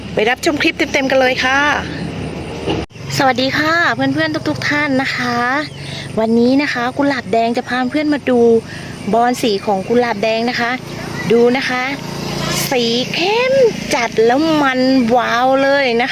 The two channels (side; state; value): both; identical; correlation 1.00